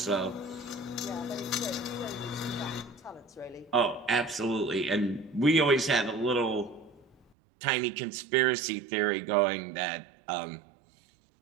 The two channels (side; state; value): left; drops out; at 7.2 s